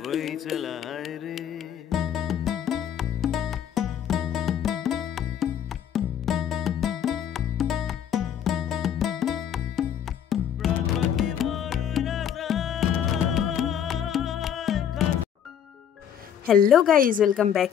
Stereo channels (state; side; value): quieter; right; 9.1 dB